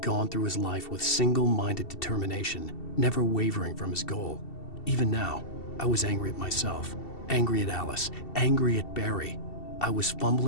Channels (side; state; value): right; late; 2.7 ms